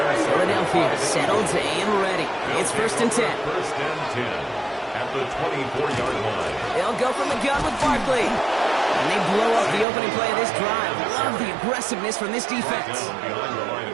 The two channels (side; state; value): left; drops out; at 9.9 s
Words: Philadelphia settled and ready. It's 1st and 10. 1st and 10 at the 24-yard line. They'll go from the gun with Barkley. And they blow up the opening play of this drive. Love the aggressiveness from this defense.